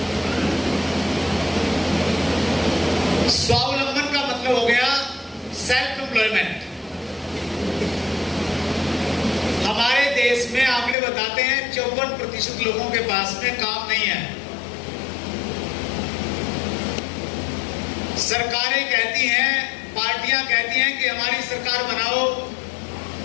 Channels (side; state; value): right; drops out; at 11.0 s